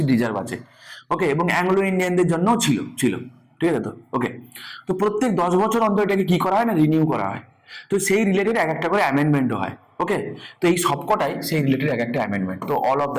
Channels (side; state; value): both; identical; correlation 1.00